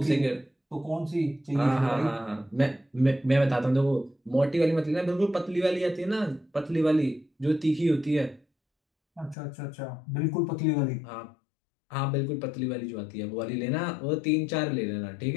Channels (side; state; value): right; drops out; at 9.3 s